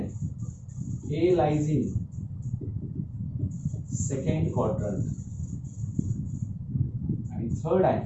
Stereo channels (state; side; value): identical; both; correlation 1.00